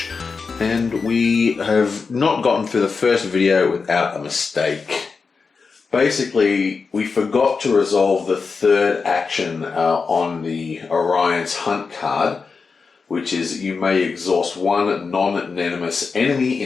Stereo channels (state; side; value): quieter; right; 4.9 dB